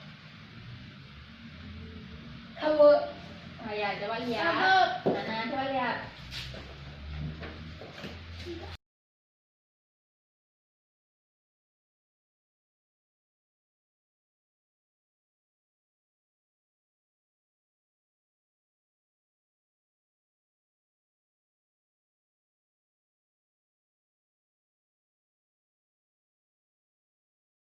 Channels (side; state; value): both; identical; correlation 1.00